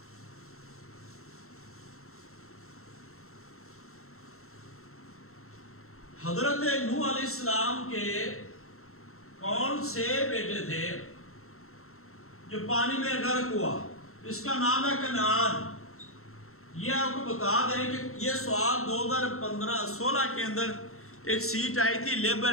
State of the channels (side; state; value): right; late; 0.63 ms